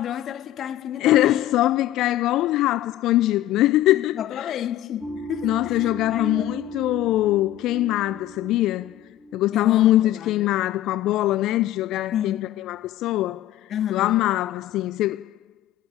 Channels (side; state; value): right; quieter; 13.6 dB